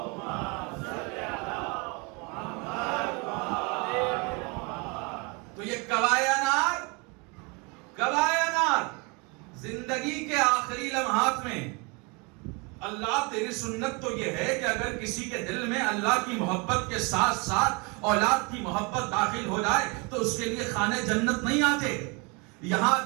زندگی کے آخری لمحات میں اللہ تیری سنت تو یہ ہے کہ اگر کسی کے دل میں اللہ کی محبت کے ساتھ ساتھ اولاد کی محبت داخل ہو جائے تو اس کے لیے خانے جنت نہیں آتے. یہاں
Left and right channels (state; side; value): quieter; left; 30.1 dB